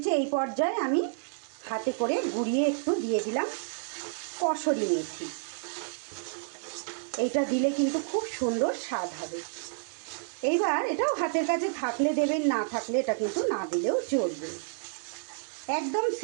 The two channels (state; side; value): silent; left; digital silence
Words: এই পর্যায়ে আমি হাতে করে গুঁড়িয়ে একটু দিয়ে দিলাম কসুরি মেথি। এইটা দিলে কিন্তু খুব সুন্দর স্বাদ হবে। এইবার এটাও হাতের কাছে থাকলে দেবেন, না থাকলে এটা কিন্তু না দিলেও চলবে। একদম